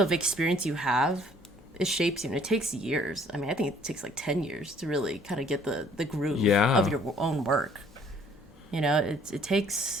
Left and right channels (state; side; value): normal; both; correlation 0.59